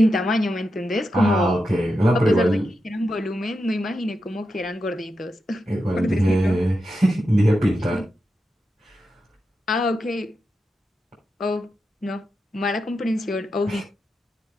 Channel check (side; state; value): both; normal; correlation 0.88